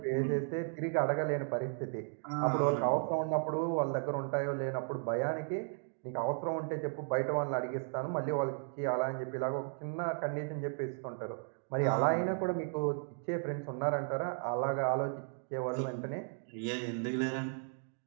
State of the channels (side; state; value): left; silent; 54 dB below the other